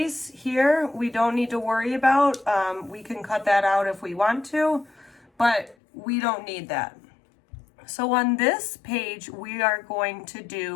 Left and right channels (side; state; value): right; drops out; at 5.8 s